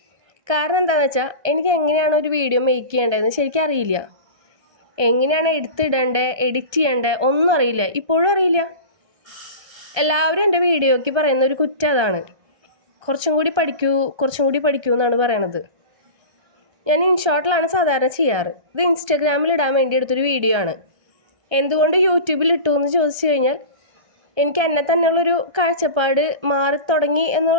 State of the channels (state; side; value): late; left; 1.3 ms